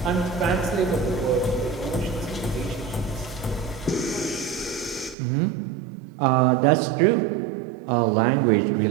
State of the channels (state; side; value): drops out; left; at 5.2 s